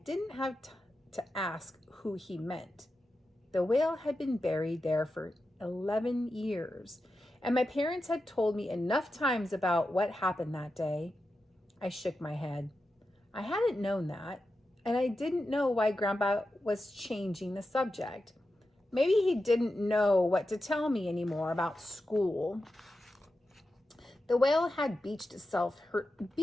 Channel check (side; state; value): both; normal; correlation 0.90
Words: have to ask who he meant. The whale had been buried there for 11 years, and my parents had told me enough times about what happened that day. I shook my head. I hadn't known that. And I didn't know why Grandpa was changing the subject. Maybe he didn't know what to tell me anymore about school. The whale had beached